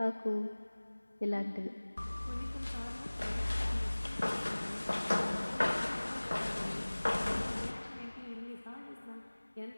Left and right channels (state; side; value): inverted; both; correlation -1.00